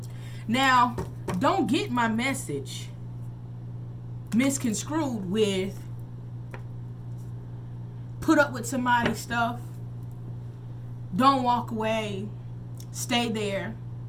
Now, don't get my message misconstrued with put up with somebody's stuff, don't walk away, stay there.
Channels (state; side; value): identical; both; correlation 1.00